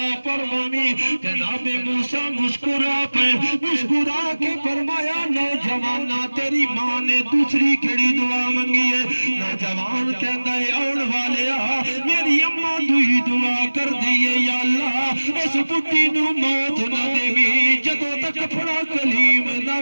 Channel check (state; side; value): inverted; both; correlation -1.00